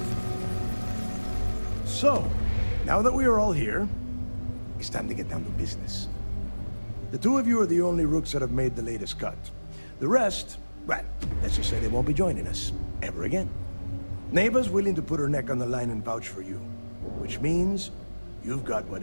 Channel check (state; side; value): inverted; both; correlation -1.00